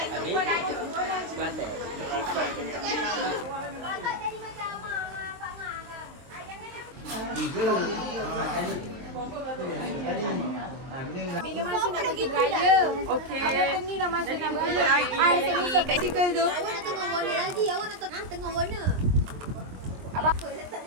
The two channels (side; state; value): left; late; 22 ms